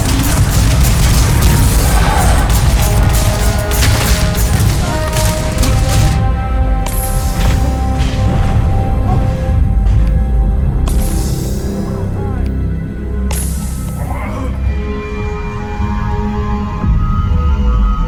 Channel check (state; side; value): identical; both; correlation 1.00